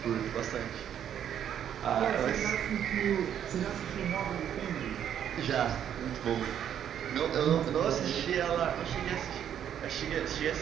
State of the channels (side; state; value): left; quieter; 9.5 dB